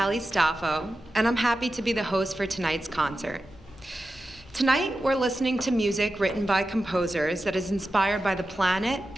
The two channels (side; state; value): both; normal; correlation 0.92